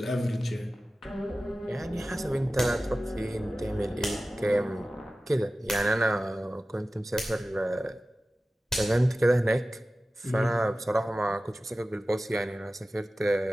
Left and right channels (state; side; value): normal; both; correlation 0.95